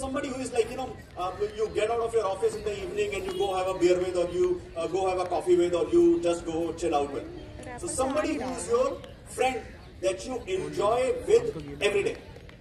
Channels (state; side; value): identical; both; correlation 1.00